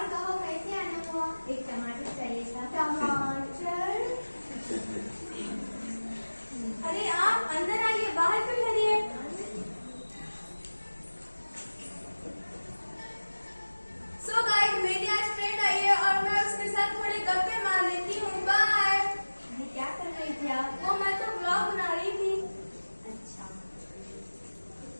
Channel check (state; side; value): inverted; both; correlation -1.00